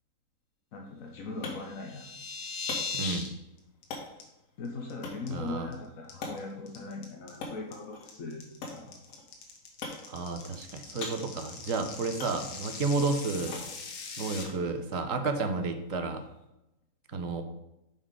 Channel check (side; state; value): right; late; 3.8 ms